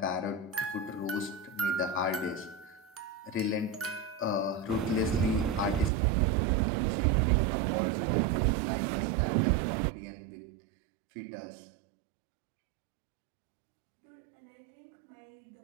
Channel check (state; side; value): drops out; left; at 5.9 s